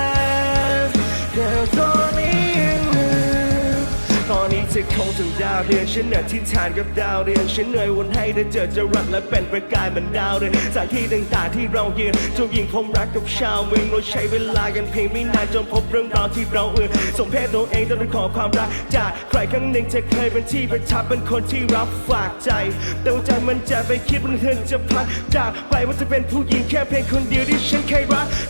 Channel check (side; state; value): both; inverted; correlation -1.00